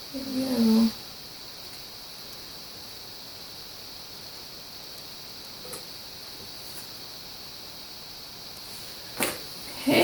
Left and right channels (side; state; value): both; identical; correlation 1.00